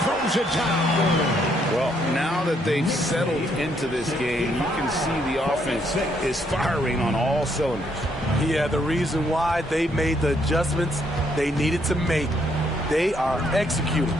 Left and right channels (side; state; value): both; normal; correlation 0.72